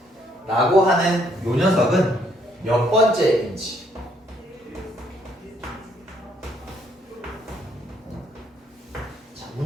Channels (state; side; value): normal; both; correlation 0.68